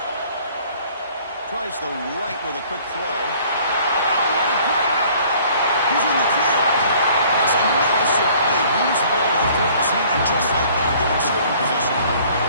Tries the right with a quick throw. He's in the clear. That's a massive play. Moves the ball to the 14, and just like that, they're in scoring position.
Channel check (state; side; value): inverted; both; correlation -0.55